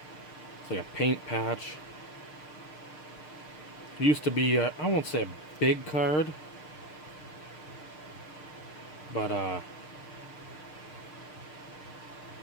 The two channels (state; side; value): late; right; 6.6 ms